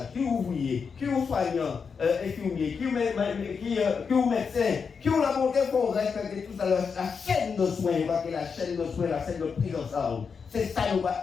Qui est ouvrier? Qui est soignant, infirmier? Qui est médecin? Qui est la volonté pour respecter tout ça, la chaîne de soins, la chaîne de soins, la chaîne de prise en charge. C'est ça nous va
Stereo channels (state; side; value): quieter; right; 5.8 dB